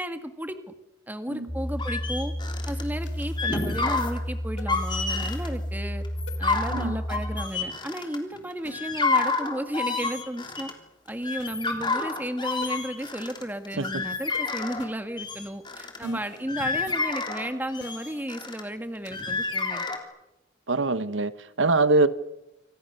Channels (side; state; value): both; normal; correlation 0.18